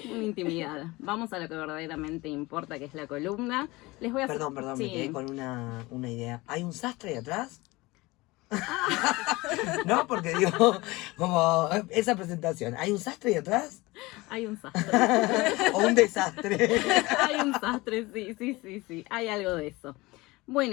intimidad. Vamos a lo que verdaderamente importa, que es la columna. Les voy a hacer... Perdón, Sí. me quedé con una idea. ¿Hay un sastre ahí atrás? No, porque digo, como esa presentación, ¿hay un sastre ahí atrás? Hay un sastre. ¿O un desastre? Hay un sastre, sí. Hay algo de eso.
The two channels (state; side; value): quieter; right; 21.7 dB